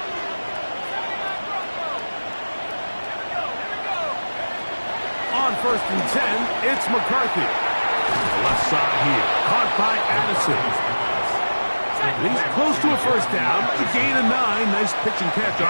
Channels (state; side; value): inverted; both; correlation -1.00